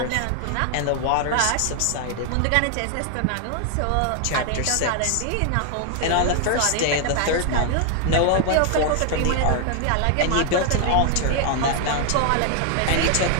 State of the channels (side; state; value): both; different; correlation 0.00